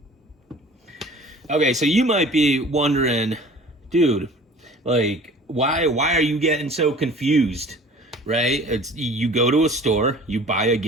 Okay, so you might be wondering, dude, like, why are you getting so confused, right? It's you go to a store, you buy a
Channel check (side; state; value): both; normal; correlation 0.46